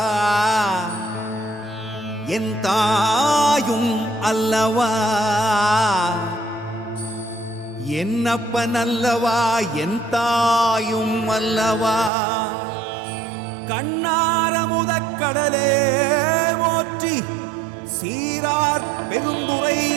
என் தாயும் அல்லவா என்னப்பனல்லவா என் தாயும் அல்லவா கண்ணாரமுதக்கடலே போற்றி சீரார் பெருந்துரை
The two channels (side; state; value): left; drops out; at 12.1 s